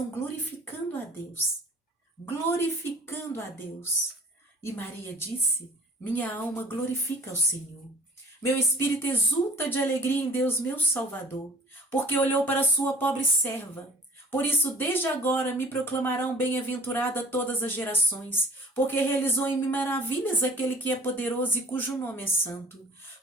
glorificando a Deus. Glorificando a Deus. E Maria disse, minha alma glorifica ao Senhor. Meu espírito exulta de alegria em Deus, meu Salvador, porque olhou para a sua pobre serva. Por isso, desde agora me proclamarão bem-aventurada todas as gerações, porque realizou em mim maravilhas aquele que é poderoso e cujo nome é santo.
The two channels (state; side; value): normal; both; correlation 0.49